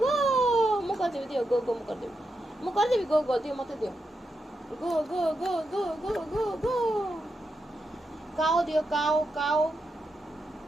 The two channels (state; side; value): normal; both; correlation 0.85